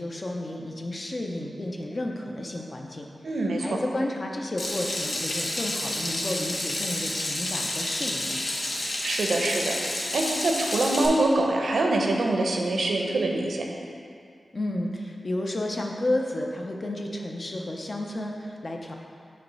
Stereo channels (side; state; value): both; normal; correlation 0.91